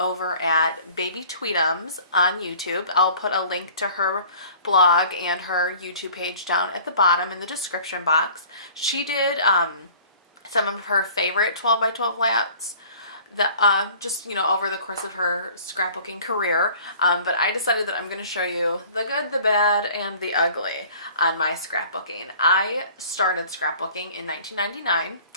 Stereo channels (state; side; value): inverted; both; correlation -0.49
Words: at Babytweetums on YouTube. I'll put a link to her blog and her YouTube page down at the bottom in the description box. She did some of her favorite 12 by 12 layouts that just over the course of her scrapbooking career, but I decided that I'm going to show you the good, the bad, and the ugly on my scrapbooking. I started scrapbooking in 1999.